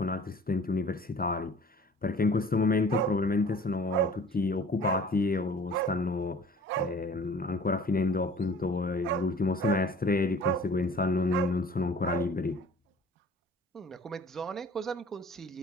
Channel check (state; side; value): normal; both; correlation 0.47